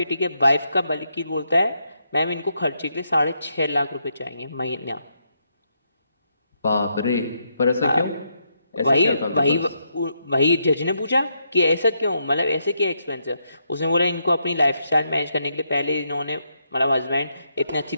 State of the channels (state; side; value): inverted; both; correlation -0.79